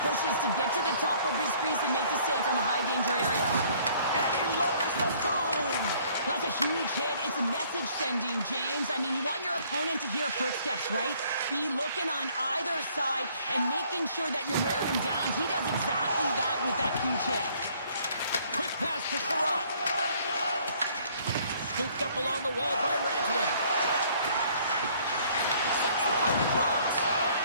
pushes to get to the top of his crease and make the save from a high-danger area. And he lowers the boom. That's a huge hit. It's a message sending, James. I mean, you want your opponent to hear footsteps, right? Be looking on either side and making sure that you're wearing him down. He does exactly that with that huge hit. Quick pass to Sherratt. Scooped up along the wall by Rantanen. Sends the puck across.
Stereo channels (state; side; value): inverted; both; correlation -0.60